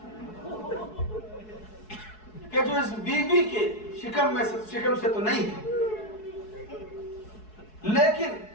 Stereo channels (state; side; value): late; right; 4.7 ms